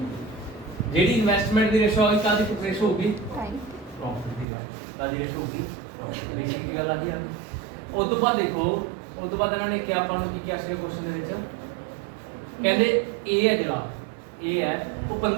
ਜਿਹੜੀ ਇਨਵੈਸਟਮੈਂਟ ਦੀ ਰੇਸ਼ੋ ਆ ਗਈ ਕਾਹਦੀ ਰੇਸ਼ੋ ਹੋਊਗੀ ਪ੍ਰੋਫਿਟ ਦੀ ਕਾਹਦੀ ਰੇਸ਼ੋ ਹੋਊਗੀ ਪ੍ਰੋਫਿਟ ਰੇਸ਼ੋ ਦੀ ਗੱਲ ਆ ਗਈ ਉਸ ਤੋਂ ਬਾਅਦ ਦੇਖੋ ਉਸ ਤੋਂ ਬਾਅਦ ਇਹਨਾਂ ਨੇ ਕਿਹਾ ਆਪਾਂ ਨੂੰ ਕੀ ਕਿਹਾ ਸੀ ਕੁਐਸਚਨ ਦੇ ਵਿੱਚ ਕਹਿੰਦੇ A ਹੈ ਜਿਹੜਾ A ਹੈ ਉਹ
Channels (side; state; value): left; drops out; at 4.5 s